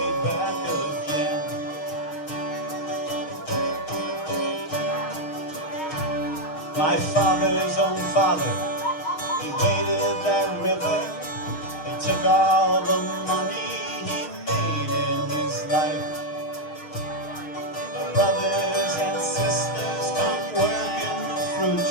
back again. My father's own father, he waded that river. Took all the money he made in his life. The brothers and sisters come work in the fruit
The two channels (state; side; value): late; right; 6.4 ms